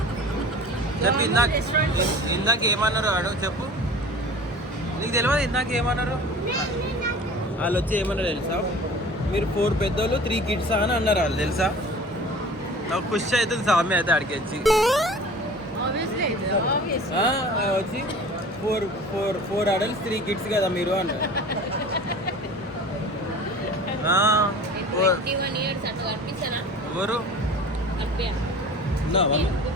చెప్పు. ఇందాక ఏమన్నారు వాడు? చెప్పు. నీకు తెలియదు ఇందాక ఏమన్నారు? వాళ్ళు వచ్చి ఏమన్నారు తెలుసా? మీరు 4 పెద్దోళ్ళు 3 కిడ్స్ అని అన్నారు వాళ్ళు. తెలుసా? నాకు ఖుషి అవుతుంది స్వామి అయితే అడిగి వచ్చి వచ్చి 4 అడల్ట్స్ 3 కిడ్స్ కదా మీరు అన్నారు. ఎవరు?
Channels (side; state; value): both; normal; correlation 0.41